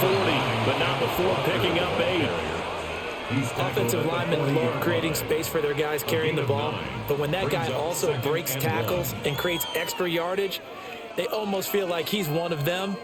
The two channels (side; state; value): both; identical; correlation 1.00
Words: 40, but not before picking up 8. Offensive linemen love creating space for their guys carrying the ball, but when that guy also breaks tackles and creates extra yardage, they almost feel like he's one of them,